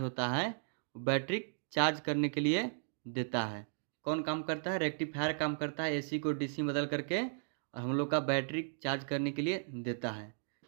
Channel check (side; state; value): left; silent; digital silence